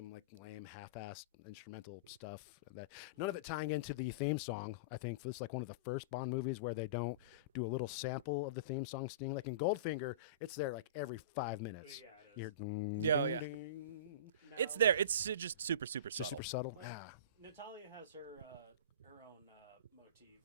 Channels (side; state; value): both; inverted; correlation -0.32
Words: like lame half-assed instrumental stuff that none of it tying into the theme song. I think this is like one of the first Bond movies where they don't do a little sample of the theme song sting. Like in Goldfinger, it's there like every 5 minutes. Yeah, it is. You hear ding, Yeah, ding, yeah. ding. It's there. It's just super subtle. Just super subtle. Yeah. Natalia has her own motif,